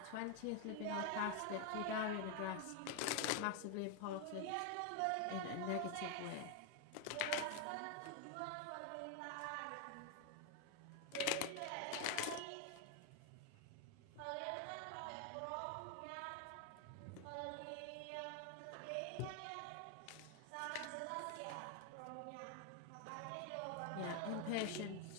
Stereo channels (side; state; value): both; different; correlation 0.01